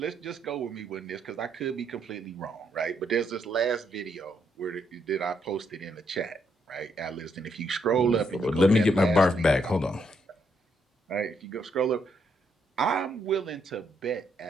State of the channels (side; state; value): both; normal; correlation 0.75